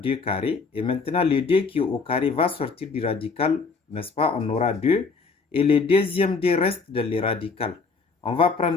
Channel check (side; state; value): right; quieter; 4.6 dB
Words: carrés. Et maintenant, le 2 qui est au carré va sortir du radical, n'est-ce pas? On aura 2. Et le deuxième 2 reste dans les radicales. On va